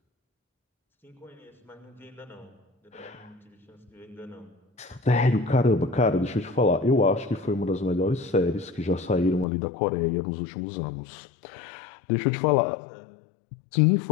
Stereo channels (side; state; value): right; drops out; at 9.5 s